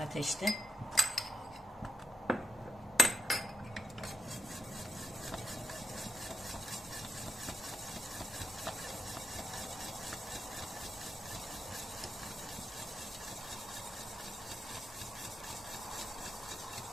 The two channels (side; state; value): both; normal; correlation 0.79